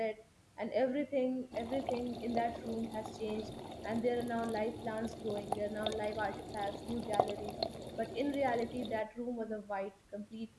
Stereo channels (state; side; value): identical; both; correlation 1.00